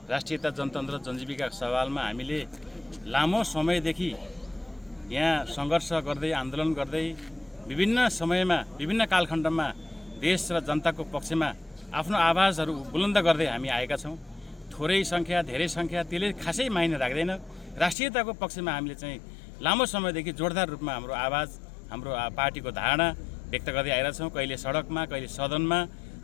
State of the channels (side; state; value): right; drops out; at 17.9 s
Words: राष्ट्रियता, जनतन्त्र, जनजीविका सवालमा हामीले लामो समयदेखि यहाँ सङ्घर्ष गर्दै आन्दोलन गर्दै विभिन्न समयमा विभिन्न कालखण्डमा देश र जनताको पक्षमा आफ्नो आवाजहरू बुलन्द गर्दै हामी आएका छौँ। थोरै सङ्ख्या धेरै सङ्ख्या त्यसले खासै मायने राख्दैन। राष्ट्रियताको पक्षमा हामीले चाहिँ लामो समयदेखि जोरदार रूपमा हाम्रो आवाज हाम्रो पार्टीको धारणा व्यक्त गर्दै आइरहेका छौँ। कहिले सडकमा कहिले सदनमा